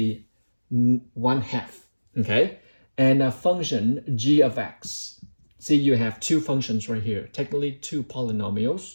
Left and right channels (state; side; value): inverted; both; correlation -1.00